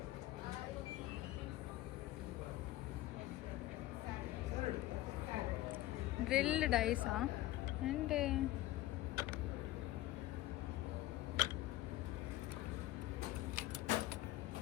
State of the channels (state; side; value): quieter; right; 15.9 dB